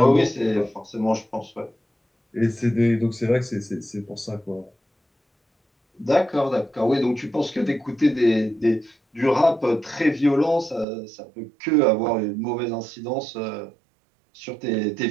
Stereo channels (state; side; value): drops out; left; at 10.9 s